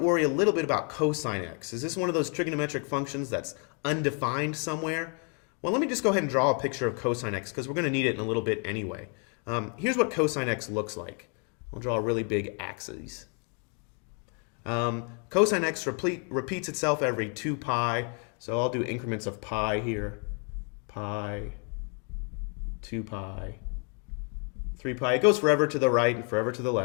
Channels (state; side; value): quieter; right; 38.8 dB